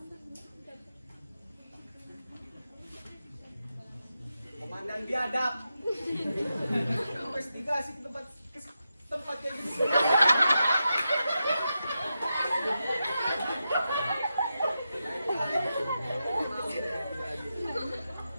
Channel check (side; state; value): both; inverted; correlation -0.88